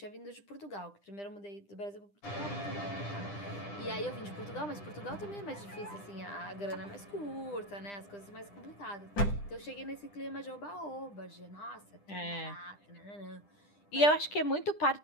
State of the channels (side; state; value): right; late; 10 ms